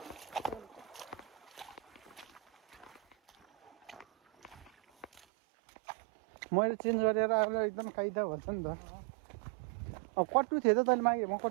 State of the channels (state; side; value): drops out; left; at 5.2 s